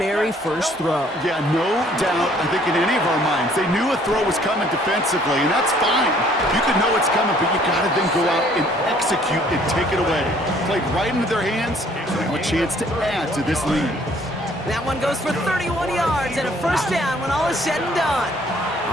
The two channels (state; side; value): normal; both; correlation 0.60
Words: first throw. Yeah, no doubt, I think in any of our minds, they knew a throw was coming defensively, and that's fine. You could know it's coming, but you got to then go out and execute and take it away. Played right into their hands, so they have a chance to add to this lead. That one goes for 31 yards and a first down when all is said and done.